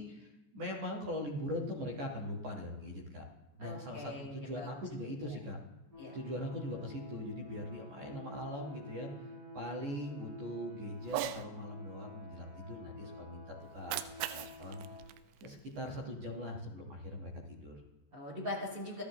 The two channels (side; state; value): left; late; 15 ms